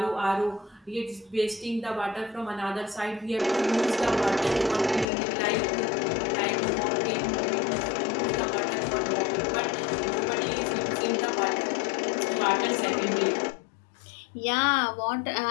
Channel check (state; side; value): drops out; right; at 5.1 s